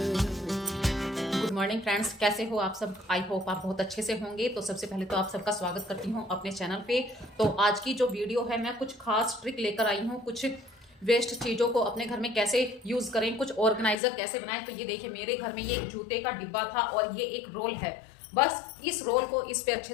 Good morning friends, कैसे हो आप सब? आई होप आप बहुत अच्छे से होंगे। तो सबसे पहले तो आप सबका स्वागत करती हूँ अपने चैनल पे। तो आज की जो वीडियो है, मैं कुछ खास ट्रिक लेकर आई हूँ। कुछ वेस्ट चीज़ों को अपने घर में कैसे यूज़ करें, कुछ ऑर्गेनाइजर कैसे बनाएं। तो ये देखिए, मेरे घर में ये एक जूते का डिब्बा था और ये एक रोल है। बस इस रोल को इस पे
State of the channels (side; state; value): right; drops out; at 14.0 s